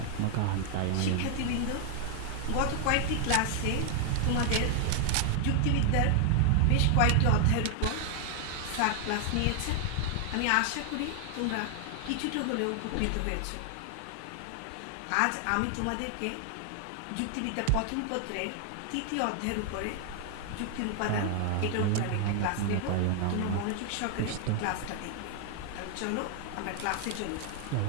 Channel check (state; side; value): different; both; correlation 0.00